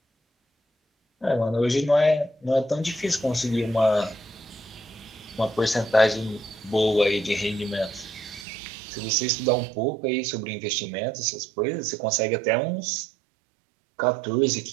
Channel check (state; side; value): drops out; left; at 8.5 s